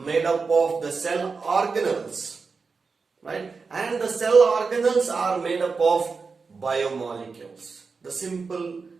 up of the cell organelles, right? And the cell organelles are made up of biomolecules, the simple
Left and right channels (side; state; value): left; quieter; 4.7 dB